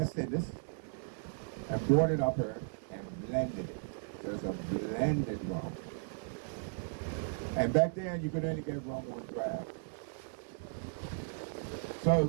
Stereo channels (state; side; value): silent; left; 54 dB below the other